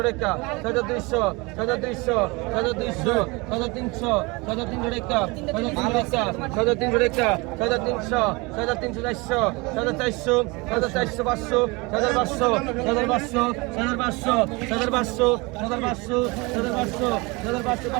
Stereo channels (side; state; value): left; quieter; 26.0 dB